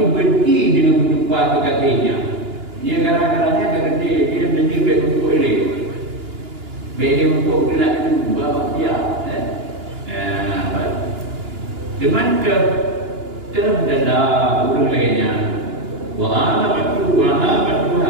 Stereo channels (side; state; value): left; late; 2.9 ms